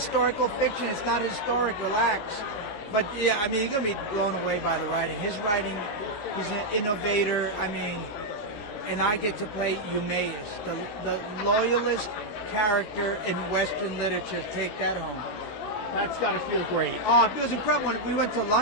fiction. It's not historic. Relax. But yeah, I mean, you're gonna be blown away by the writing. His writing, he's an innovator. I mean, and I get to play Eumaeus, the loyalist character in Western literature. Take that home. That's got to feel great. Oh, it was incredible. When we went to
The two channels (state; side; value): late; right; 14 ms